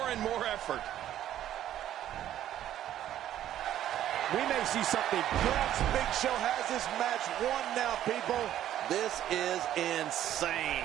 and more effort. We may see something. Perhaps Big Show has this match won now, people. This is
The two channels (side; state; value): left; quieter; 11.8 dB